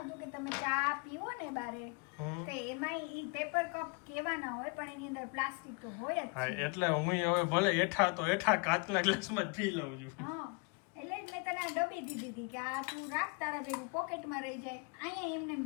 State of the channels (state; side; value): quieter; right; 30.8 dB